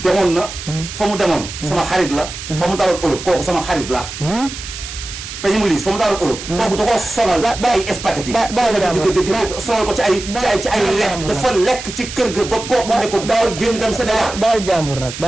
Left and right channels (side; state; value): right; noise; hiss, 10 dB below the sound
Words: demoon na. fa mu demoon. sama xarit la. fa mu daloon Europe kooku sama xarit la. peñi mu liis fa mu daloon Europe. kooku da koo sonal ba ay spaghetti. sonal ko ci ay lekk dafa lekk ci kër ga ba kooku ne ko dawal génn dem Sénégal. baal jàmbur nag